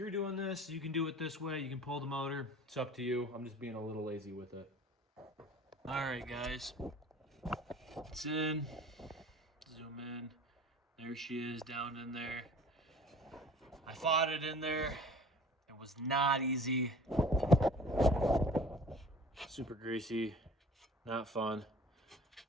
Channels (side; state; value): both; normal; correlation 0.46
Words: doing this, you can do it this way. You can pull the motor. It's up to you. I'm just being a little lazy with it. All right, guys. It's in. Zoom in. There she is down in there. I fought it in there. It was not easy. Super greasy. Not fun.